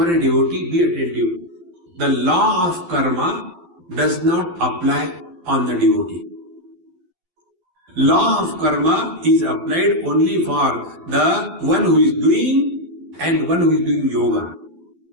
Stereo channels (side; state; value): left; late; 12 ms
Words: a devotee, be attentive. The law of karma does not apply on the devotee. Law of karma is applied only for the one who is doing and one who is doing yoga.